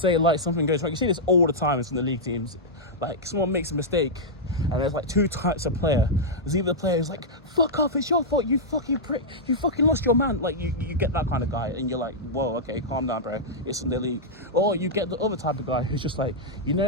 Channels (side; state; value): both; normal; correlation -0.08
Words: like something goes wrong. You see this all the time in some of the league teams. Like someone makes a mistake and there's like two types of player. There's either the player who's like, fuck off, it's your fault, you fucking prick, you fucking lost your man. Like you get that kind of guy and you're like, whoa, okay, calm down, bro, it's in the league. Or you get the other type of guy who's just like, you